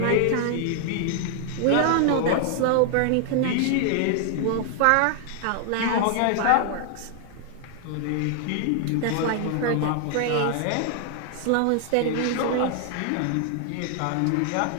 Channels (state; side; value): different; both; correlation 0.00